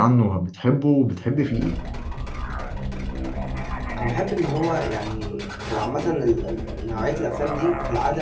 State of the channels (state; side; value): identical; both; correlation 1.00